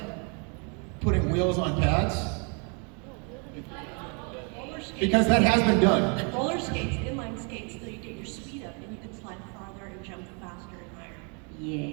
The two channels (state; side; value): quieter; left; 36.2 dB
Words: putting wheels on pads? Roller skates. Because that has been done. Roller skates, inline skates, so you get your speed up and you can slide farther and jump faster and higher.